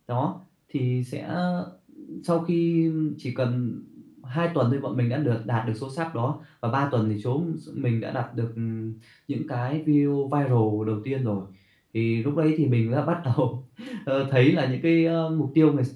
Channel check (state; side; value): identical; both; correlation 1.00